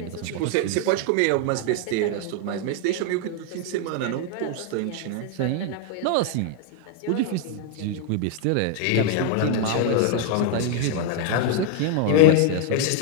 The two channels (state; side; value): different; both; correlation 0.00